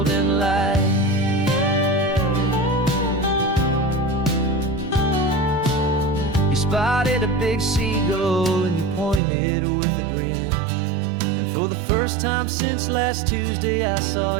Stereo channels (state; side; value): drops out; left; at 9.2 s